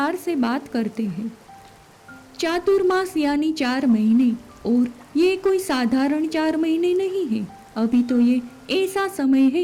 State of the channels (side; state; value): both; identical; correlation 1.00